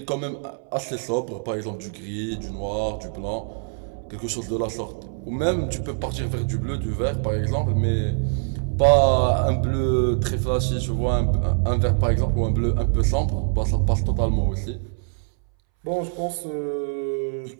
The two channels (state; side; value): silent; left; 63 dB below the other